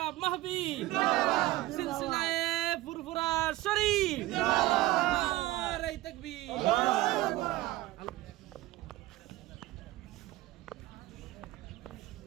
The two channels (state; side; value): quieter; left; 17.7 dB